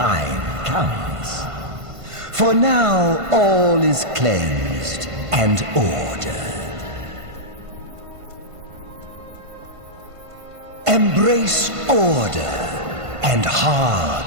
comes. For now, all is cleansed and ordered. Embrace order and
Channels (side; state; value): left; late; 1.5 ms